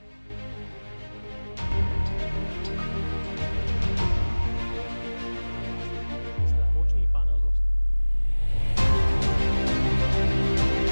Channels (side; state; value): both; inverted; correlation -1.00